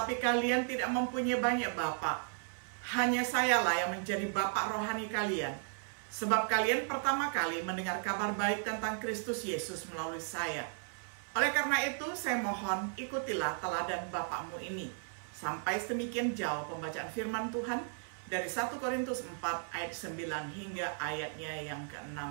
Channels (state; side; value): silent; left; 54 dB below the other